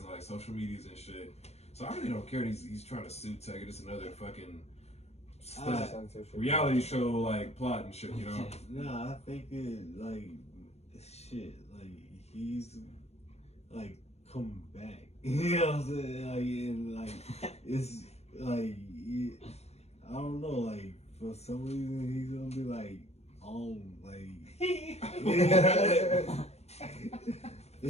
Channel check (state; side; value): late; right; 0.31 ms